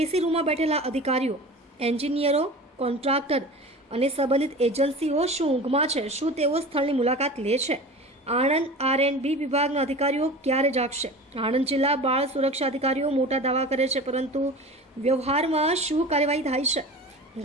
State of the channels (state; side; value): normal; both; correlation 0.35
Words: રૂમમાં બેઠેલા અધિકારીઓ, એન્જિનિયરો, કોન્ટ્રાક્ટર અને સંબંધિત એજન્સીઓ શું ઊંઘમાં છે? શું તેઓ સ્થળની મુલાકાત લે છે? આણંદ R&B વિભાગના અધિકારીઓ ક્યારે જાગશે? આણંદ જિલ્લા બાળ સુરક્ષા અધિકારીઓ મોટા દાવા કરે છે, પરંતુ વ્યવહારમાં શું કાર્યવાહી થાય છે?